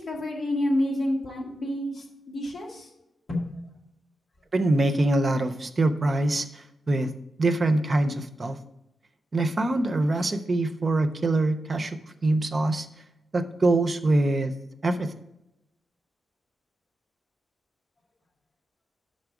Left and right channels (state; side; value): normal; both; correlation 0.90